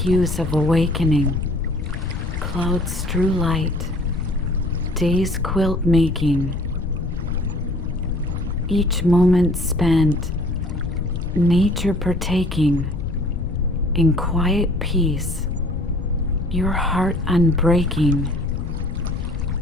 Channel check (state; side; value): noise; left; rumble, 4 dB below the sound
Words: of awakening, clouds strew light, day's quilt making. Each moment spent, nature partaking, in quiet peace, your heart unbreaking.